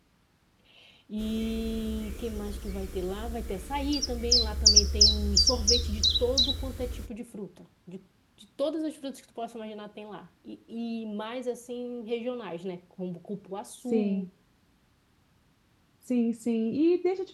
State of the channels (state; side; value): identical; both; correlation 1.00